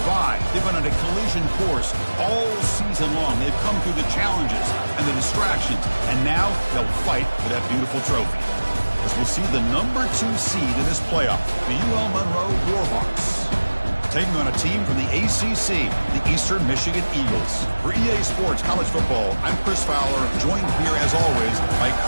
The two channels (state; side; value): inverted; both; correlation -1.00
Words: They've been on a collision course all season long. They've come through the challenges and the distractions, and now they'll fight for that beautiful trophy. As we'll see the number 2 seed in this playoff, the UL Monroe Warhawks, taking on a team from the ACC, the Eastern Michigan Eagles. For EA Sports College Football, I'm Chris Fowler, joined here as always by